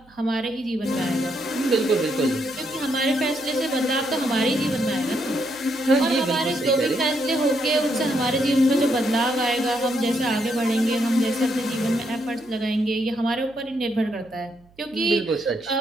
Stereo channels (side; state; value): right; noise; hum, 29 dB below the sound